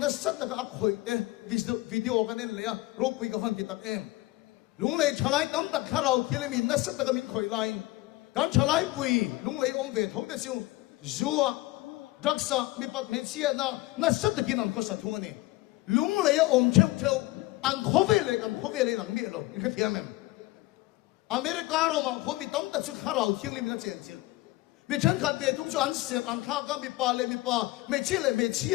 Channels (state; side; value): quieter; right; 19.5 dB